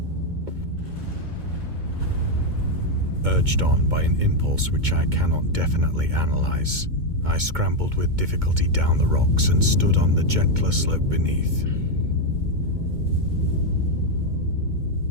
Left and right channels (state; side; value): late; left; 2.2 ms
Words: Urged on by an impulse which I cannot definitely analyze, I scrambled with difficulty down the rocks and stood on the gentler slope beneath.